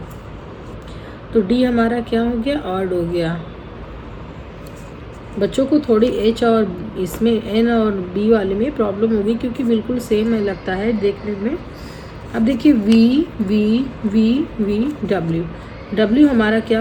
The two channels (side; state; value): both; identical; correlation 1.00